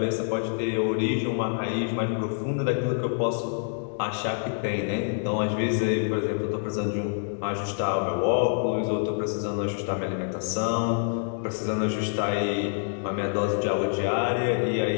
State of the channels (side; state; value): right; silent; digital silence